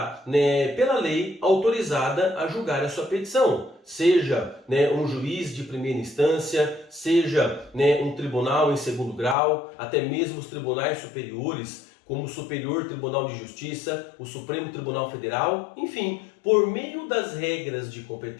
pela lei, autorizada a julgar a sua petição. Seja um juiz de primeira instância, seja um tribunal em segundo grau, até mesmo os tribunais superiores, como o Superior Tribunal de Justiça, o Supremo Tribunal Federal, enfim, por meio das regras de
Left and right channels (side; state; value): right; drops out; at 9.3 s